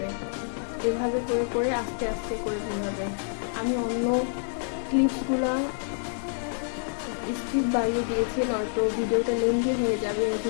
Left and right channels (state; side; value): silent; right; 60 dB below the other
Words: এভাবে করে করে আস্তে আস্তে করে ঘোরাবে। আমি অন্য ক্লিপসগুলা স্পিড বাড়িয়ে দিয়েছি, নয়তো ভিডিওটা লেন্দি হয়ে যাবে